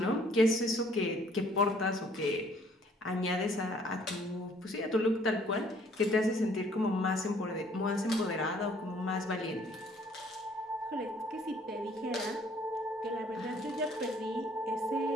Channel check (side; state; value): both; normal; correlation 0.60